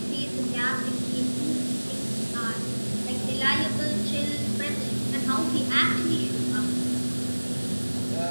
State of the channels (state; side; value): inverted; both; correlation -1.00